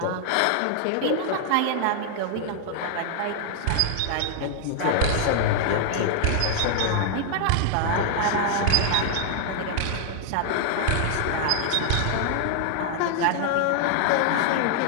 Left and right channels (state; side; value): different; both; correlation -0.01